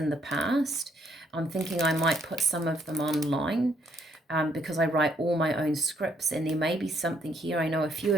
the past. I'm thinking I might put some of them online because I write all my own scripts, and there may be something here. I know a few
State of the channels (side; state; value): both; normal; correlation 0.69